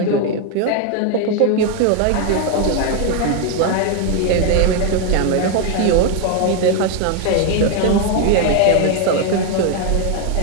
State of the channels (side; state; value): both; different; correlation 0.01